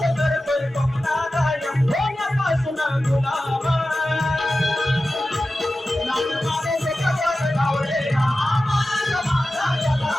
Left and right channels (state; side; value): normal; both; correlation 0.94